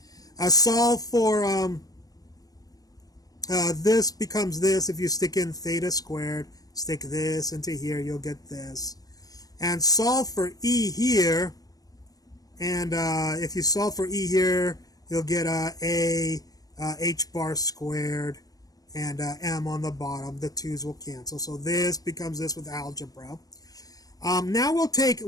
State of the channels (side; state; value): right; late; 0.18 ms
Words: Solve for this becomes this. If you stick in theta squared, stick this into here, you'll get this. And solve for e here. And if you solve for e here, you'll get a h bar squared and m on the bottom. The 2's will cancel. So this becomes this with algebra. Now we'll take,